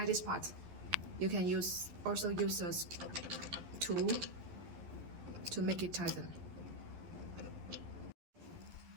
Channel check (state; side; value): late; left; 11 ms